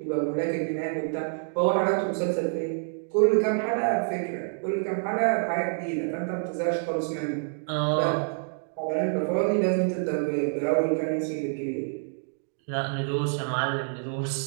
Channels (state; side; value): silent; left; digital silence